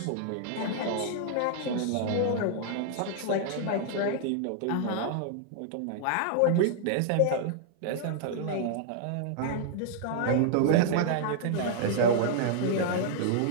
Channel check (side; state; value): both; different; correlation -0.01